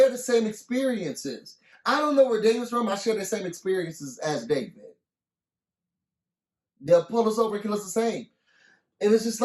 the same experiences. I don't know where David's from. I share the same experiences as David. They'll pull us over and kill us the same. And it's just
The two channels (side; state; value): both; identical; correlation 1.00